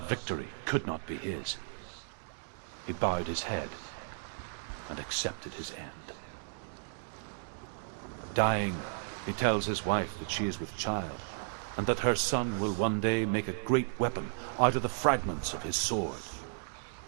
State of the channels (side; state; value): left; silent; digital silence